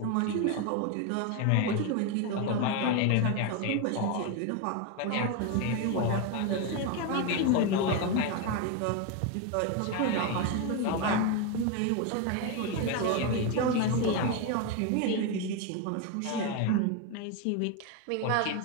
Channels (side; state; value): both; different; correlation 0.02